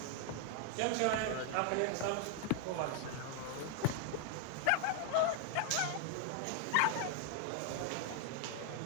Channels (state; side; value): different; both; correlation 0.00